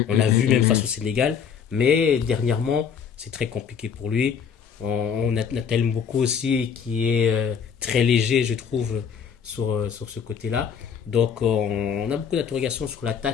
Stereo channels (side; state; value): right; quieter; 7.2 dB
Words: On l'a vu même face au Sénégal. Mais dernièrement, c'est très compliqué pour lui. On a Nathaniel Mboko aussi qui est très léger, je trouve, sur ce côté-là. Donc, on a beaucoup d'interrogations sur